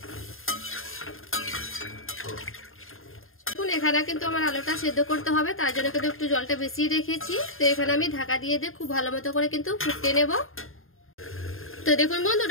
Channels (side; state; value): right; late; 0.60 ms